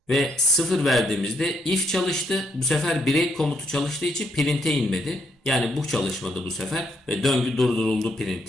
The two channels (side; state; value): both; normal; correlation 0.74